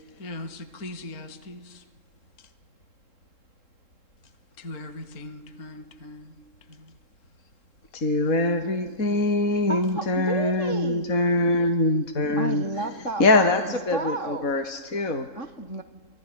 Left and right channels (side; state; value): right; late; 3.7 ms